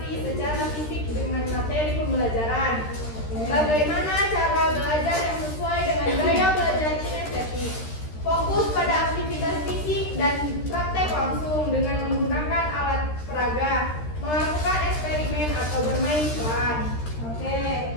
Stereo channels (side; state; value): right; late; 13 ms